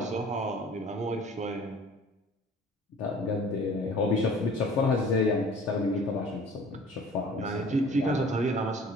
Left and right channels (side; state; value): both; normal; correlation 0.48